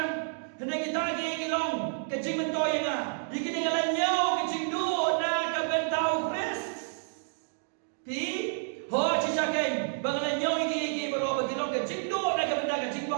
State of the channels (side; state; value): left; silent; digital silence